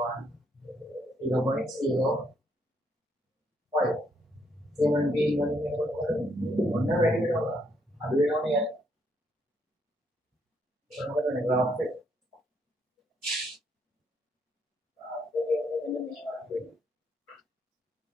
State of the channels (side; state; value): both; normal; correlation 0.73